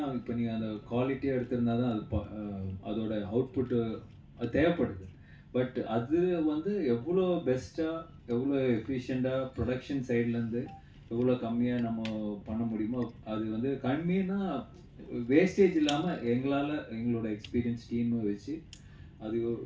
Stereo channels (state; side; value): identical; both; correlation 1.00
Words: இப்போ நீங்கள் அந்த குவாலிட்டியாக எடுத்திருந்தா தான் அது அதோட அவுட்புட்டு அது தேவைப்படுது. பட் அது வந்து எவ்வளோ பெஸ்ட்டாக எவ்வளோ எஃபிஷியண்ட்டாக ப்ரொடக்ஷன் சைட்லேருந்து எவ்வளோ கம்மியாக நம்ம பண்ண முடியுமோ, அது வந்து கம்மின்னா வேஸ்டேஜ் இல்லாமல் எங்களால் எங்களோட எக்ஸ்பீரியன்ஸ் டீமை வச்சு அது